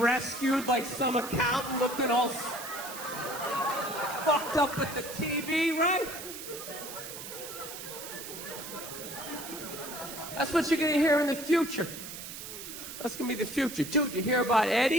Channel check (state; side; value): noise; right; hiss, 10 dB below the sound